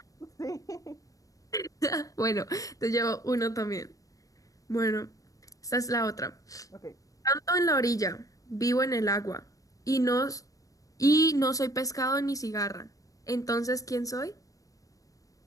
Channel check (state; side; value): late; right; 0.16 ms